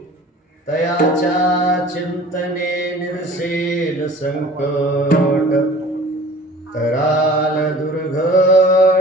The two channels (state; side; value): normal; both; correlation 0.45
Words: तयाच्या चिंतने निरसेल संकट तराल